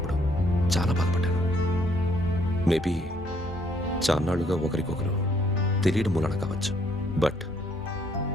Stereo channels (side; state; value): both; normal; correlation 0.68